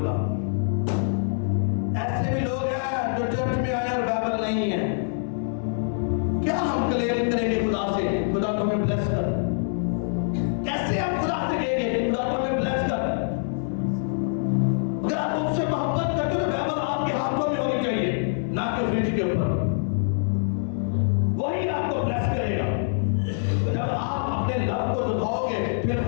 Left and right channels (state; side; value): silent; right; 62 dB below the other